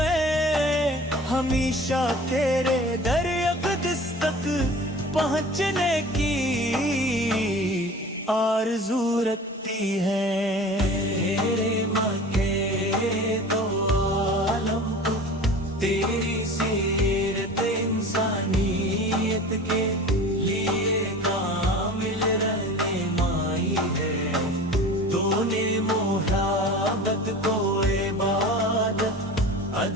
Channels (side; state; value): both; normal; correlation 0.39